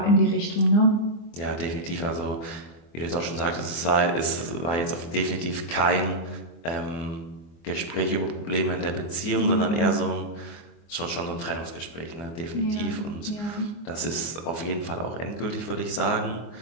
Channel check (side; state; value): right; late; 24 ms